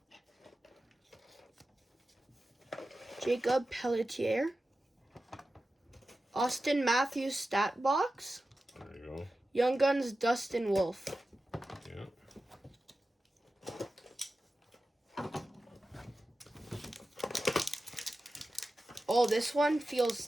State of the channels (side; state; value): both; normal; correlation 0.93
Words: Jacob Pelletier, Austin Matthews stat box, There you go. Young Guns Dustin Wolf. Yeah. Oh, this one feels